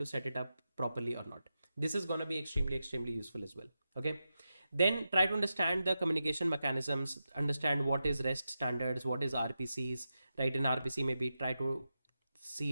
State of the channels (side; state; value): both; inverted; correlation -0.90